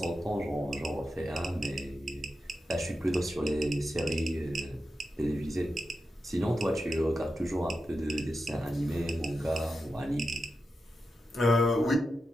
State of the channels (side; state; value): both; normal; correlation 0.89